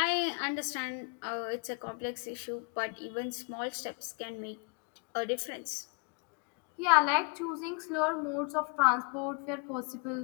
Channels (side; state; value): right; quieter; 35.6 dB